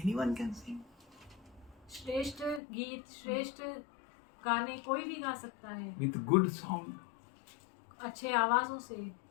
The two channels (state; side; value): drops out; right; at 2.6 s